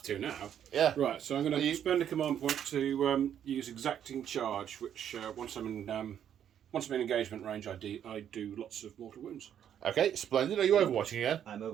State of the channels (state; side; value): quieter; left; 9.5 dB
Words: to now. Yeah. Right, so I'm going Are you- to spend a command point to use exacting charge, which once I'm in engagement range, I do lots of mortal wounds. Okay, splendid. Are you overwatching again? I'm